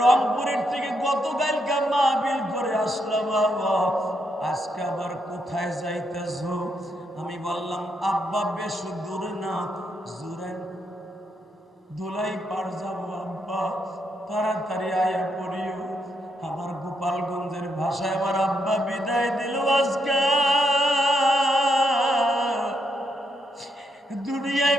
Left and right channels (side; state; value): both; normal; correlation 0.79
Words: থেকে গতকালকে মাহফিল করে আসলাম বাবা, আজকে আবার কোথায় যাইতেছ? আমি বললাম আব্বা বেশ দূরে না, জুরাইন ধুলাই পার যাবো আব্বা, তাড়াতাড়ি আয়া পড়িও। আমার গোপালগঞ্জের ভাষায় আমার আব্বা বিদায় দিল আজকে। দুনিয়ায়